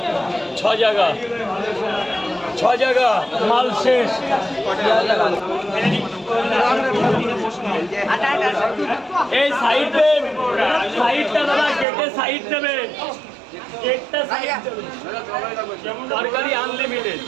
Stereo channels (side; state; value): left; drops out; at 11.9 s